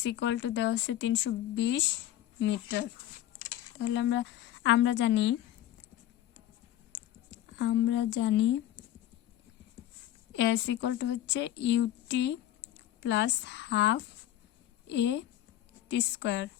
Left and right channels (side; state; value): right; quieter; 12.8 dB